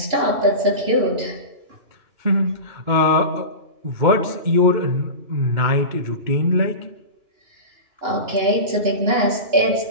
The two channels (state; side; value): late; left; 2.9 ms